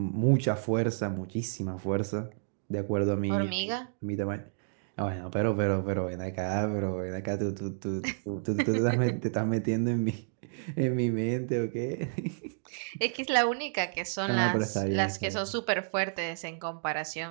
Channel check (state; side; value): silent; left; digital silence